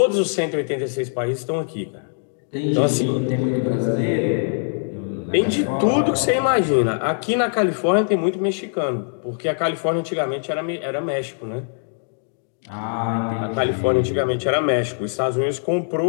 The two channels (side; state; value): right; silent; digital silence